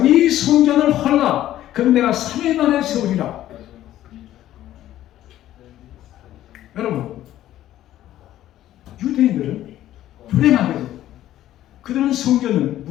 이 성전을 헐라 그럼 내가 3일 만에 세우리라. 여러분 유대인들은 불행하게도 그들은 성전을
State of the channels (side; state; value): right; quieter; 13.2 dB